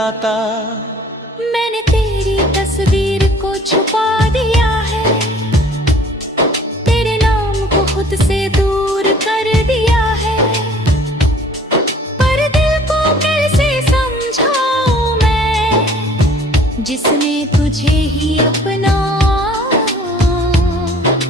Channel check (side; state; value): both; normal; correlation 0.52